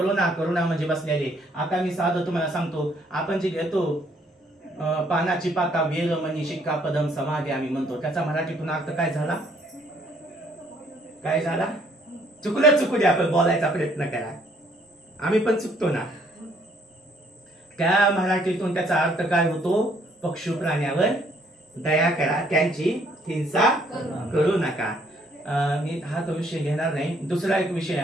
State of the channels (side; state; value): both; normal; correlation 0.65